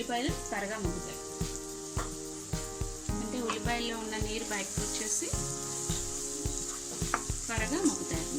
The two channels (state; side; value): identical; both; correlation 1.00